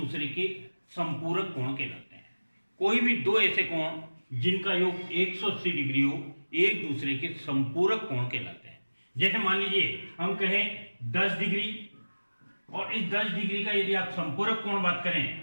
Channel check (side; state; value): both; inverted; correlation -1.00